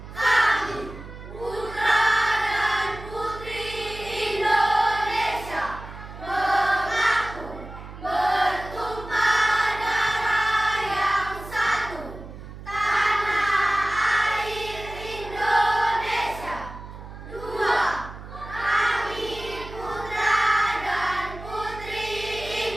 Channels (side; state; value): right; noise; hum, 13 dB below the sound